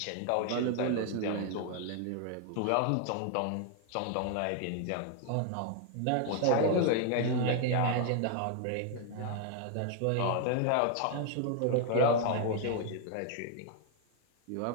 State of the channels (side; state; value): both; different; correlation 0.00